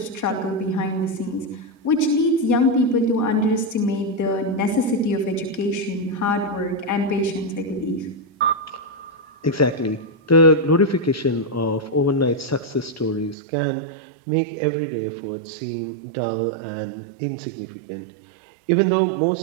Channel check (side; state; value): left; drops out; at 13.4 s